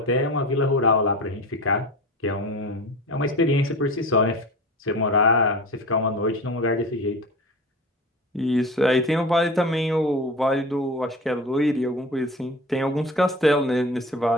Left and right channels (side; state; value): both; normal; correlation 0.33